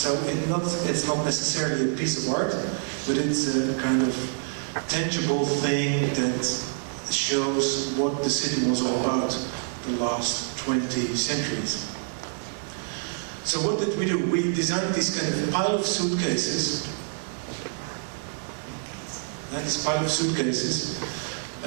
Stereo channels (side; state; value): left; silent; digital silence